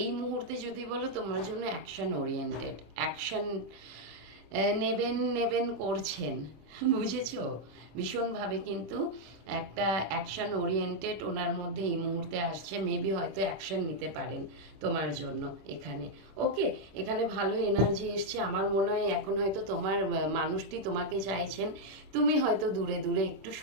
এই মুহূর্তে যদি বলো তোমার জন্য অ্যাকশন ওরিয়েন্টেড, অ্যাকশন নেবেন নেবেন করছেন, বুঝেছো? ভীষণভাবে কিন্তু একটা অ্যাকশন ওরিয়েন্টেড ওনার মধ্যে এই মুহূর্তে আসছে। মেবি হয়তো অ্যাকশন নিতে পারেন তোমার জন্য এখানে। ওকে, এখানে ভালো এনার্জি এসছে। আমার মনে হয় এখন হয়তো তোমার মানুষটি তোমাকে চাইছেন, তুমি হয়তো দূরে দূরে একটু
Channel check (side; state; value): left; late; 26 ms